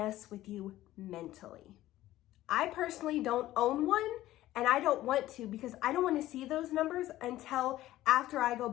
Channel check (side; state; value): right; quieter; 15.1 dB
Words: with you mentally. I personally don't own one, and I don't want to, because I don't want to see those numbers until after I go